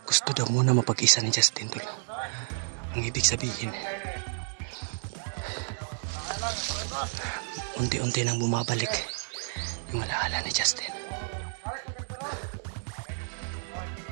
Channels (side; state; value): left; silent; digital silence